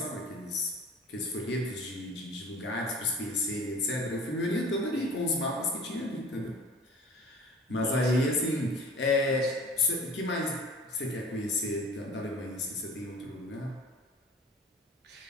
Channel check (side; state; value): both; normal; correlation 0.44